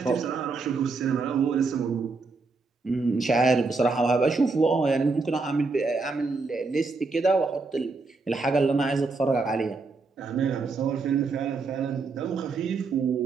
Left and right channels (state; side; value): quieter; left; 4.0 dB